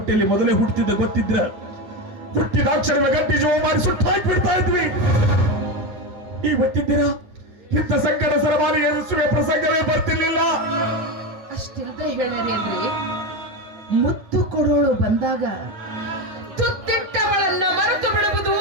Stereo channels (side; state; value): left; late; 9.9 ms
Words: ಮೊದಲೇ ಹುಟ್ಟಿದ್ದ ಗೊತ್ತಿದ್ರ ಹುಟ್ಟಿದ ಅಕ್ಷರಗಳ ಗಟ್ಟಿ ಜೀವ ಮಾಡಿ ಸುಟ್ಟು ಹಾಕಿ ಬಿಡ್ತಾ ಇದ್ವಿ. ಈ ಹೊತ್ತಿದ್ದೀರ ಇಂಥ ಸಂಕಟ ಸರಮಾರಿ ಎದುರಿಸುವ ಪ್ರಸಂಗವೇ ಬರ್ತಿರ್ಲಿಲ್ಲ. ಅಷ್ಟಿಲ್ದ ಹೇಳ್ಯಾರಿ ಅಂದ್ರೆ ಮುತ್ತು ಕೊಡೋಳು ಬಂದಾಗ ತುತ್ತಿಟ್ಟವಳನ್ನ ಮರೆತು ಬಿಡುವುದು